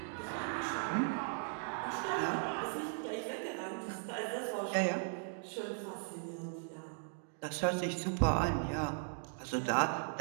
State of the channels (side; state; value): left; silent; digital silence